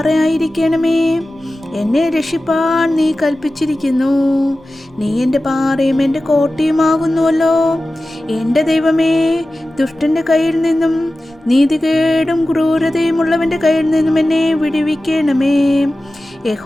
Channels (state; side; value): normal; both; correlation 0.95